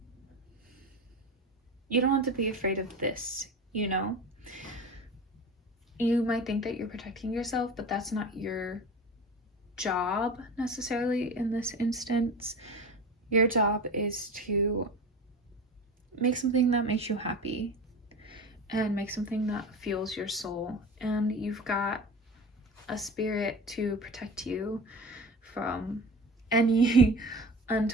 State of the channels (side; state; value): both; normal; correlation 0.32